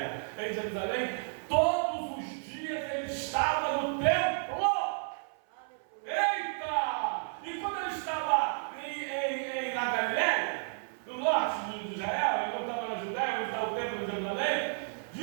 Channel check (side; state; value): left; silent; 56 dB below the other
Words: em Jerusalém, todos os dias ele estava no templo? Eita! E quando ele estava na Galileia, no norte de Israel, ele não estava na Judéia, onde está o templo de Jerusalém,